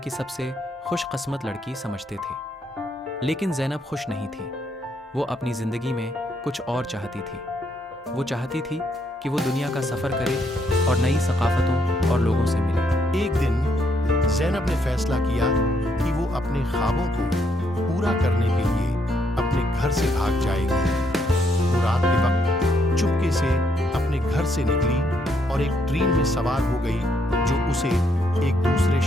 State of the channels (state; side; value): normal; both; correlation 0.74